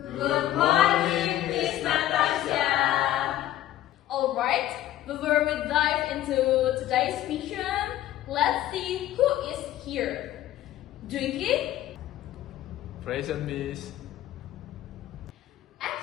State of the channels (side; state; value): right; quieter; 13.6 dB